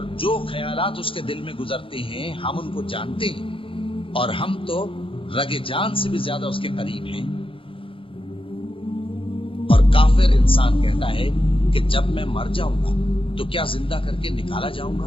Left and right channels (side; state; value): right; late; 0.26 ms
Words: جو خیالات اس کے دل میں گزرتے ہیں ہم ان کو جانتے ہیں, اور ہم تو رگ جان سے بھی زیادہ اس کے قریب ہیں. اور کافر انسان کہتا ہے کہ جب میں مر جاؤں گا تو کیا زندہ کر کے نکالا جاؤں